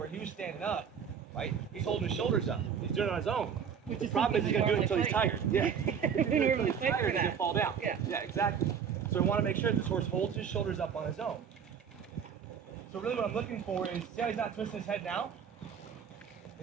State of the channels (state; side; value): quieter; left; 7.3 dB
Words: he was standing up. Right? He's holding his shoulders up. He's doing it on his own. Which The problem is he's going to do it until he's tired. Yeah. We normally fight for He's going that. to fall down. Yeah. Exactly. So I want to make sure that this horse holds his shoulders up on his own. So really what I'm looking for is, see how he's not twisting his head now?